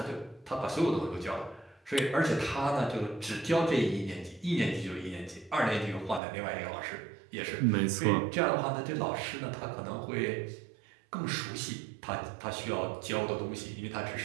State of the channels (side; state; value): left; drops out; at 6.2 s